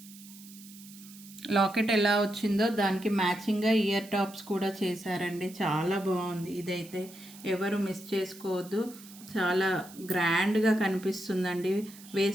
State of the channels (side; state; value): right; noise; hiss, 19 dB below the sound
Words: లాకెట్ ఎలా వచ్చిందో దానికి మ్యాచింగ్గా ఇయర్ టాప్స్ కూడా చేశారండి, చాలా బాగుంది. ఇదైతే ఎవరు మిస్ చేసుకోవద్దు, చాలా గ్రాండ్గా కనిపిస్తుందండి.